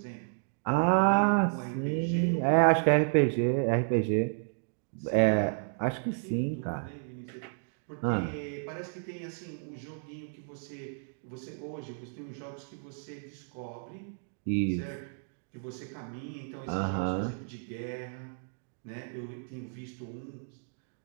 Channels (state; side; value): silent; left; digital silence